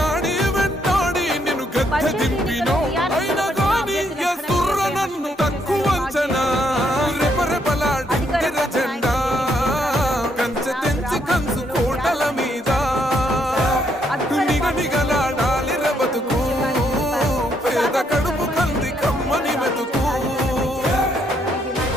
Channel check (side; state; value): both; normal; correlation 0.73